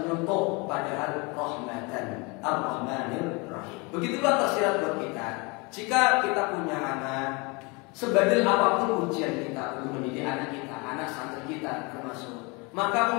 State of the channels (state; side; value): quieter; right; 28.6 dB